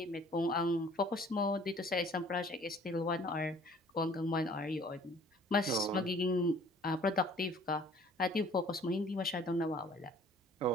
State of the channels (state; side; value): normal; both; correlation 0.54